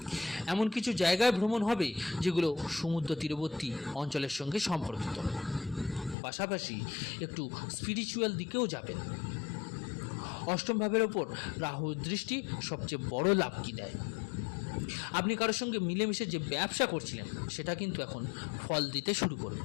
এমন কিছু জায়গায় ভ্রমণ হবে যেগুলো সমুদ্র তীরবর্তী অঞ্চলের সঙ্গে সম্পর্কিত। পাশাপাশি একটু স্পিরিচুয়াল দিকেও যাবেন। অষ্টম ভাবের ওপর রাহুর দৃষ্টি সবচেয়ে বড় লাভ কি দেয়। আপনি কারোর সঙ্গে মিলেমিশে যে ব্যবসা করছিলেন সেটা কিন্তু এখন ফল দিতে শুরু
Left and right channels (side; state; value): right; drops out; at 6.2 s